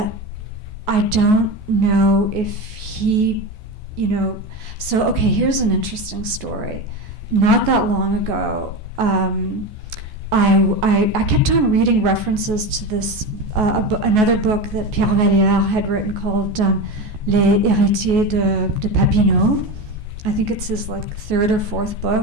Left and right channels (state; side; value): late; left; 14 ms